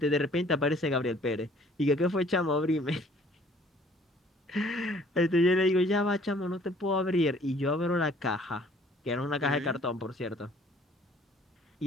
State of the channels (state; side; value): normal; both; correlation 0.56